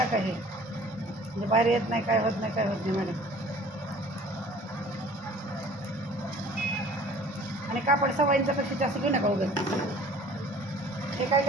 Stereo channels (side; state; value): both; normal; correlation 0.49